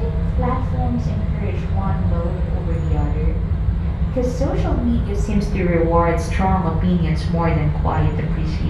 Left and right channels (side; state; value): both; identical; correlation 1.00